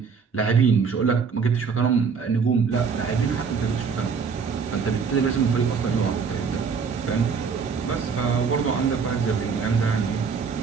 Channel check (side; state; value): left; quieter; 5.7 dB